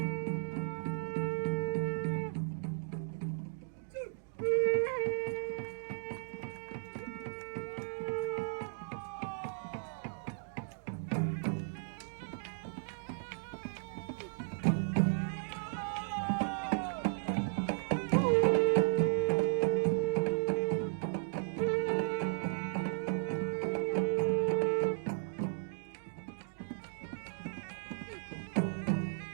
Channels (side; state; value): left; silent; digital silence